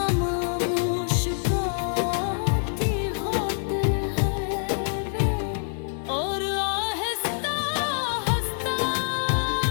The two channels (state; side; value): silent; right; digital silence